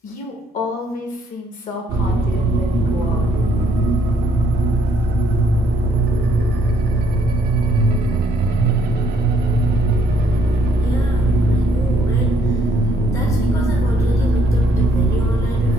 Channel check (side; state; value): both; normal; correlation 0.68